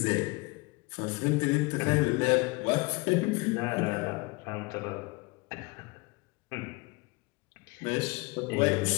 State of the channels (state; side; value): quieter; right; 26.5 dB